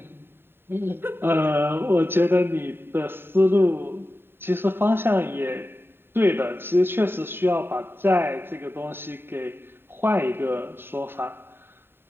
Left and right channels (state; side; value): late; left; 0.11 ms